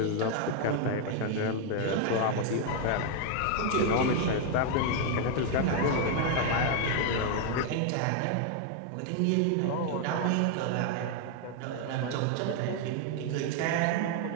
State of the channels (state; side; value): different; both; correlation 0.00